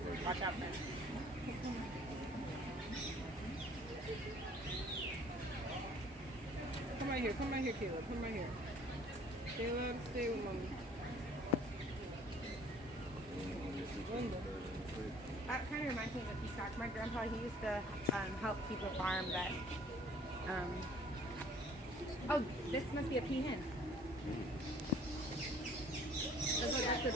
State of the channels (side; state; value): both; normal; correlation 0.54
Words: Watch out, man. Come right here, Caleb. Come right here. Caleb, stay with mommy. That kind of reminds me of a peacock. My grandpa, he used to help keep a farm that. Oh, this must be a peahen.